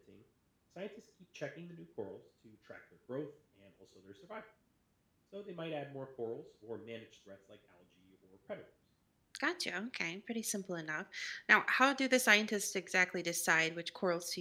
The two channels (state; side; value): identical; both; correlation 1.00